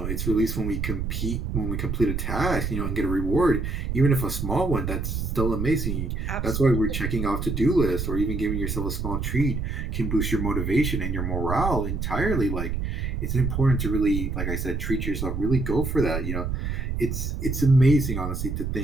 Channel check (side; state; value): right; noise; rumble, 2 dB below the sound